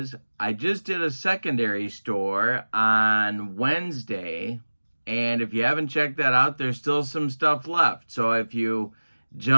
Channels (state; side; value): inverted; both; correlation -1.00